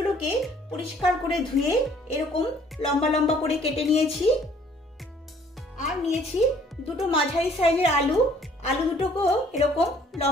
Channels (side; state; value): both; normal; correlation 0.59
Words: পরিষ্কার করে ধুয়ে এরকম লম্বা লম্বা করে কেটে নিয়েছি। আর নিয়েছি দুটো মাঝারি সাইজের আলু দুটোকেও এরকম